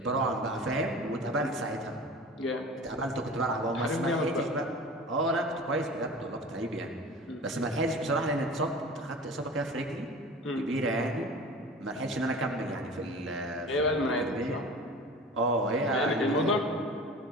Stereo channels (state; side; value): normal; both; correlation 0.38